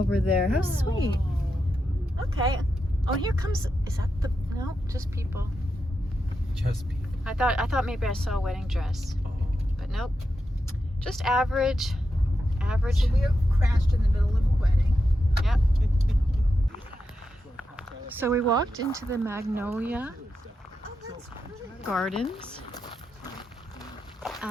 there. How sweet. Okay. Oh, here comes. Is that the? No, just people. Just people. I thought maybe I saw a wedding dress, Oh. but nope. Just average. Average. So we crashed in the middle of a wedding. Yep. So we walked into the Magnolia Oh, that's pretty. Gardens,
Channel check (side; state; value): both; normal; correlation 0.87